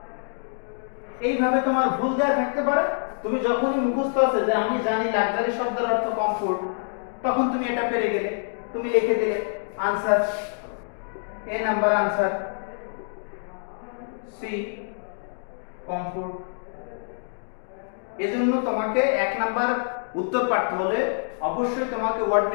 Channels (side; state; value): right; silent; digital silence